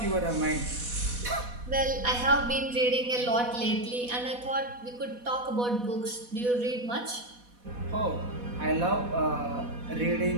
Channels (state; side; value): late; left; 4.1 ms